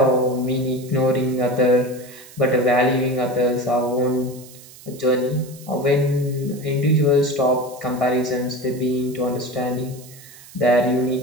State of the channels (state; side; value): noise; right; hiss, 20 dB below the sound